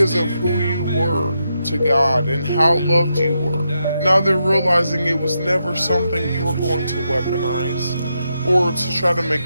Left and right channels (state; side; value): inverted; both; correlation -0.84